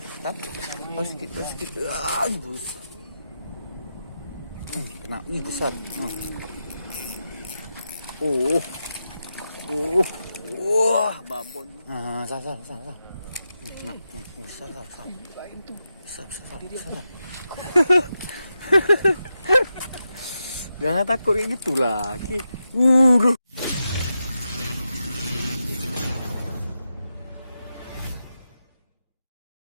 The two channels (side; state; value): both; inverted; correlation -0.88